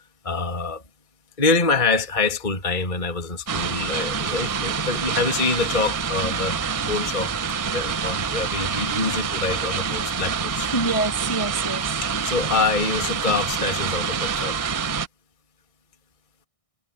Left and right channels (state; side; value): late; right; 1.6 ms